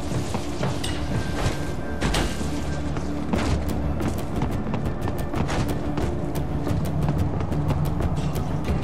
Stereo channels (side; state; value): both; identical; correlation 1.00